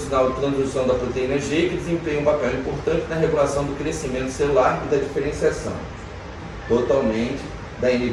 de transdução da proteína G, que desempenha um papel importante na regulação do crescimento celular e da diferenciação, totalmente da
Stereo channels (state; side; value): identical; both; correlation 1.00